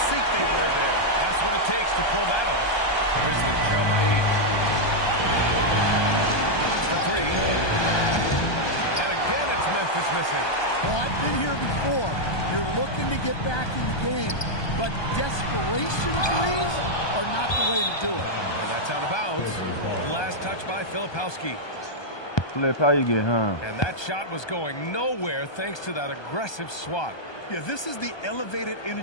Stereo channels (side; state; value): right; late; 1.2 ms